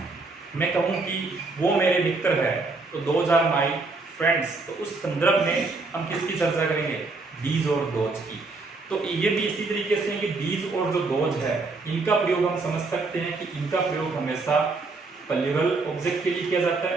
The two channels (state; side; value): quieter; left; 3.7 dB